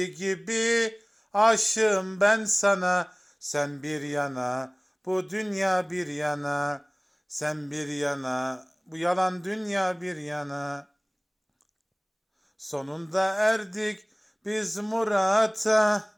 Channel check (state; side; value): identical; both; correlation 1.00